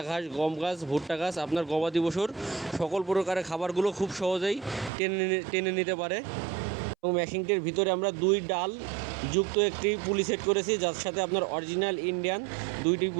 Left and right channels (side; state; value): left; drops out; at 4.9 s